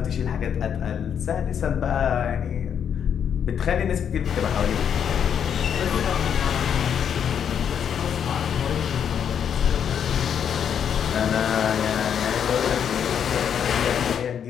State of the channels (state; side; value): quieter; right; 8.2 dB